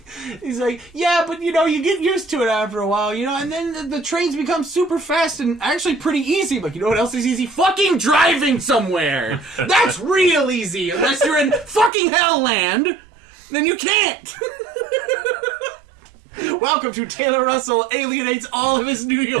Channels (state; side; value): drops out; left; at 11.9 s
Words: He's like, yeah, but, you get used to it after a while, and then the trains become super fast and actually pretty easy. But you know what else is easy? Fucking driving somewhere! That's real easy! Unless you're in fucking Hellland, then you can't! Welcome to Taylor Russell alienates all of his New